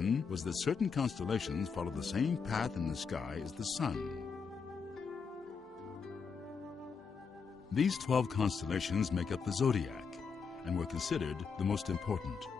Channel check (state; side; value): quieter; right; 5.6 dB